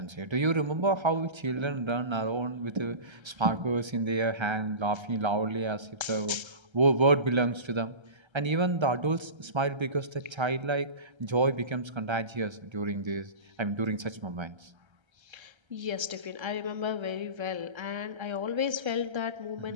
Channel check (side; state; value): left; late; 1.3 ms